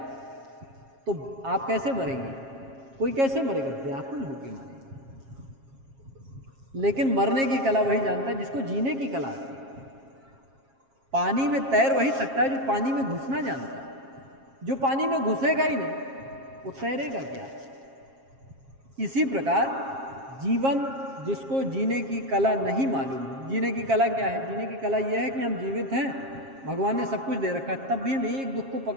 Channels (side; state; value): left; late; 7.4 ms